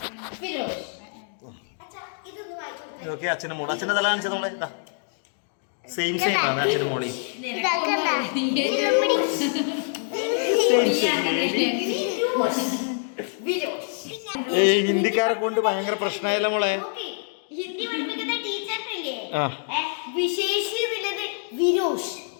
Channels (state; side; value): silent; right; 60 dB below the other